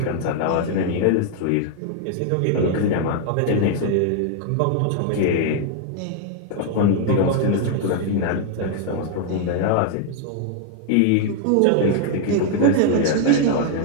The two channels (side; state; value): both; different; correlation 0.00